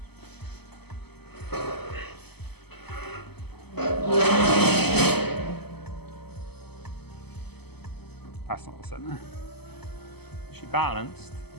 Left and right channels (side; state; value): right; late; 0.97 ms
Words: That's not the center. Is she balanced